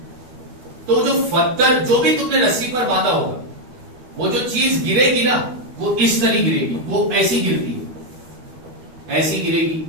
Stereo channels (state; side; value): late; left; 13 ms